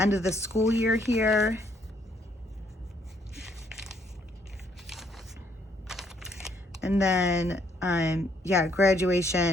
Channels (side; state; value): both; normal; correlation 0.69